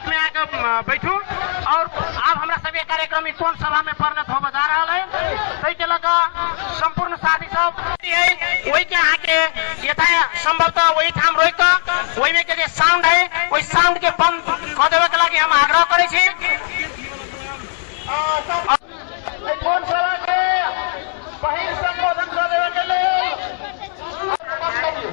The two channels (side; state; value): right; silent; 65 dB below the other